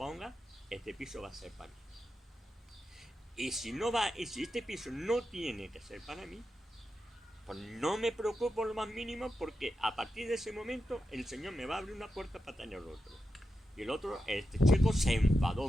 este piso va a ser para mí. Y si este piso no tiene que ser para mí, pues no me preocupo lo más mínimo, porque a partir de ese momento el Señor me va a abrir una puerta para tener otro. Y el otro, este chico se enfadó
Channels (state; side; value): normal; both; correlation 0.89